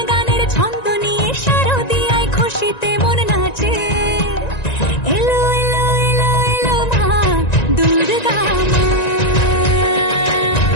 গানের ছন্দ নিয়ে শারদিয়ায় খুশিতে মন নাচে। এলো এলো এলো এলো মা দুর্গা মা,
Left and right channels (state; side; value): late; right; 1.9 ms